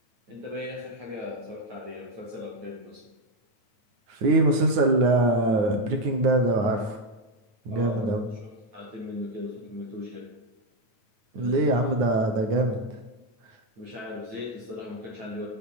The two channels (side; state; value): left; late; 9.1 ms